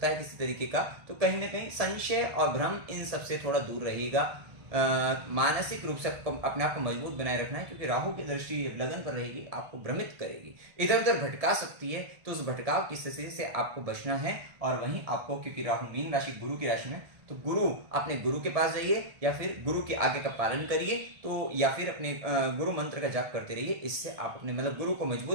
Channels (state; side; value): late; left; 1.7 ms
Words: है किसी तरीके का। तो कहीं ना कहीं संशय और भ्रम इन सबसे थोड़ा दूर रहेगा। मानसिक रूप से अपने आप को मजबूत बनाए रखना है, क्योंकि राहु की दृष्टि लगन पर रहेगी, आपको भ्रमित करेगी, इधर उधर भटका सकती है। तो उस भटकाव की स्थिति से आपको बचना है। और वहीं आपको, क्योंकि राहु मीन राशि गुरु की राशि में, तो गुरु, अपने गुरु के पास जाइए या फिर गुरु के आगे का पालन करिए, तो या फिर अपने गुरु मंत्र का जाप करते रहिए। इससे आप अपने मतलब गुरु को